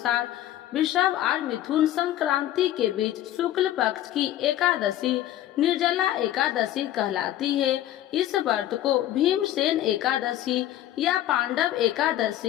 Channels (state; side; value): quieter; right; 13.0 dB